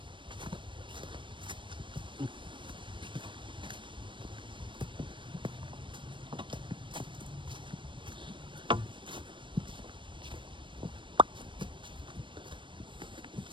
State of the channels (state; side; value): late; left; 0.24 ms